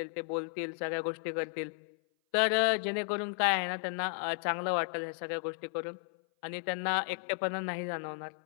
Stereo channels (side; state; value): right; silent; 55 dB below the other